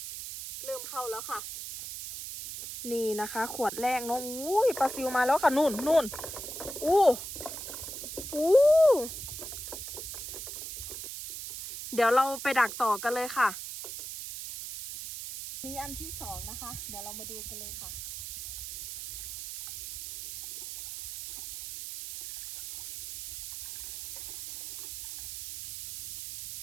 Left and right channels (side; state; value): right; noise; hiss, 8 dB below the sound